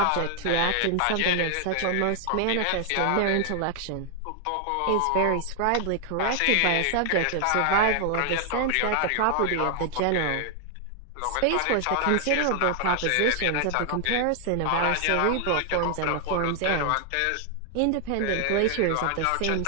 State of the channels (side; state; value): both; different; correlation 0.00